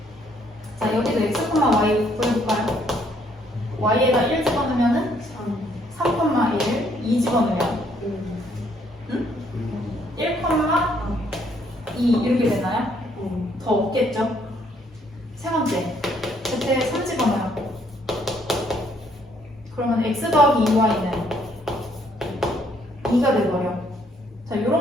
자, 여기도 x, y 보여볼까요? y에다 1 집어넣으면은 3,1 2 집어넣으면 1, 2 이렇게 되나요? 더 없겠죠? 세 번째, Z에 3 집어넣어요. 그러면 X 더하기 2Y는 2가 돼버려. 자,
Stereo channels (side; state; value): both; normal; correlation 0.67